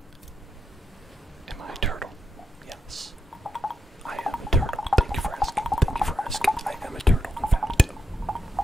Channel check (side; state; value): both; normal; correlation 0.84